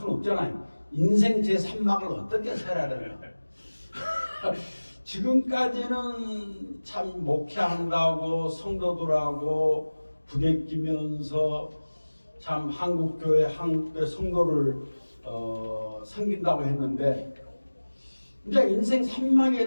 없잖아요. 인생 제3막을 어떻게 살아야 되나. 지금까지는 참 목회한다고 성도들하고 부대끼면서 참 한국교회 성도를 섬긴다고 했는데 이제 인생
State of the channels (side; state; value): both; inverted; correlation -1.00